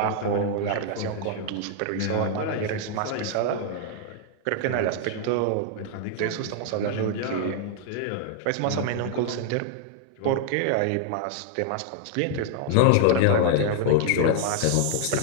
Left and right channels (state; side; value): different; both; correlation 0.00